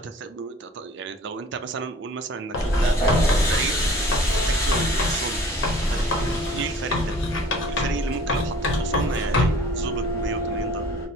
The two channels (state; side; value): normal; both; correlation 0.49